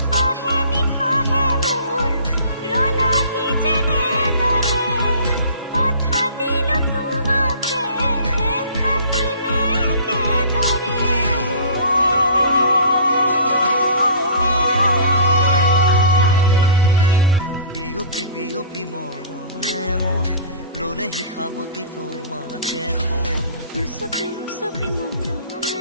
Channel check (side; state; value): both; inverted; correlation -0.45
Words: নিশাহে মোৰ ৰলাহি যেনেদৰে, কথা দিলো তোমাকে থাকিমে একেদৰে। বিয়পি বিয়পি মৰমে মোৰ ললেহি সাৱটি তোমাকে সোণ। উচপি উচপি